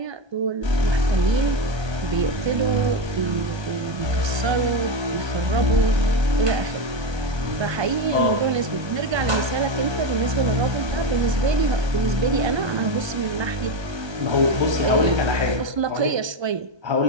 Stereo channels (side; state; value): left; late; 1.3 ms